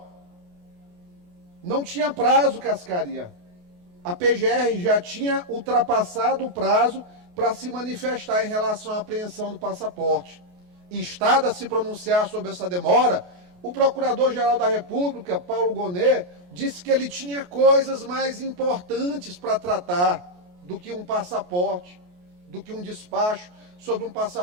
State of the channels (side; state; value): left; late; 28 ms